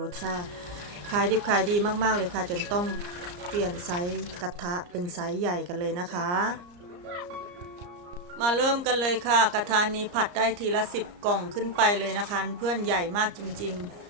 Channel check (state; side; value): late; left; 34 ms